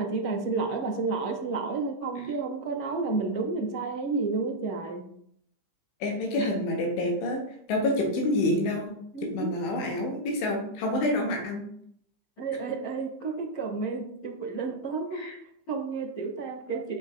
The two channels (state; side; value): late; right; 15 ms